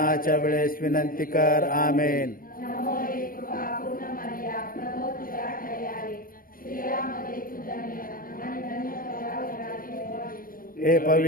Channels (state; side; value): late; right; 0.41 ms